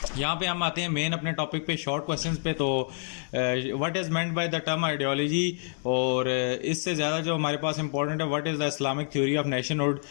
यहाँ पे हम आते हैं मेन अपने टॉपिक पे शॉर्ट क्वेश्चंस पे। तो what is meant by the term ideology, और इससे ज़्यादा जो हमारे पास इंपॉर्टेंट है what is the Islamic theory of nationhood.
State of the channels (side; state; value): right; silent; 60 dB below the other